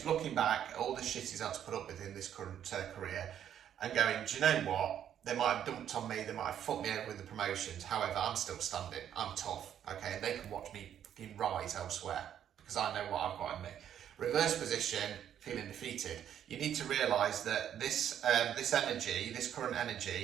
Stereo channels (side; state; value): left; quieter; 9.8 dB